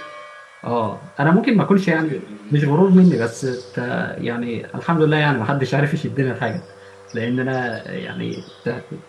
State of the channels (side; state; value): both; identical; correlation 1.00